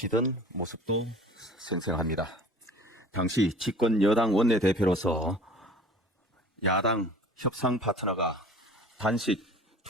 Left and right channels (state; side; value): normal; both; correlation 0.45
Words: 모습도 생생합니다. 당시 집권 여당 원내대표로서 야당 협상 파트너가 단식